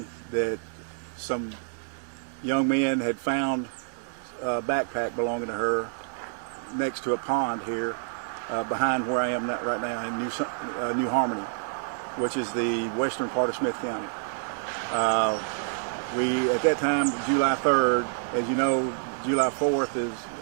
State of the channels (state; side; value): silent; left; digital silence